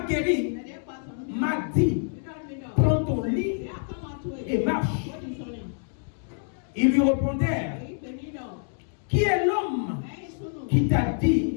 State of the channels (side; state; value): right; silent; digital silence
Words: guéri m'a dit, prends ton lit et marche. Ils lui répondèrent, qui est l'homme qui t'a